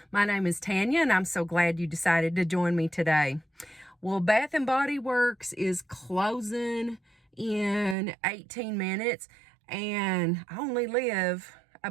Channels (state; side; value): drops out; left; at 8.0 s